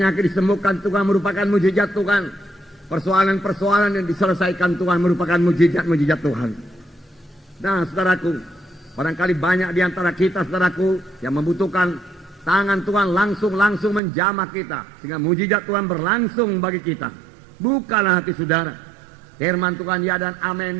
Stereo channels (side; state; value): left; drops out; at 14.0 s